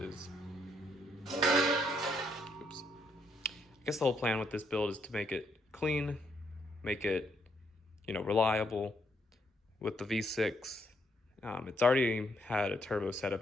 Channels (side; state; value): both; normal; correlation 0.74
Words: I guess the whole plan with this build is to make it clean, make it, reliable with the V6. It's already had a turbo setup